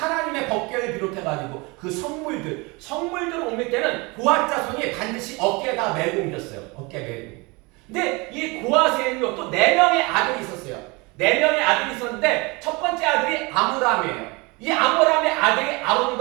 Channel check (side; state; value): left; quieter; 26.5 dB